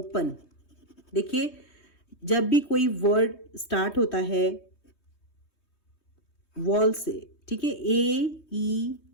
देखिए, जब भी कोई वर्ड स्टार्ट होता है वॉल से, ठीक है,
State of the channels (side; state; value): right; late; 3.2 ms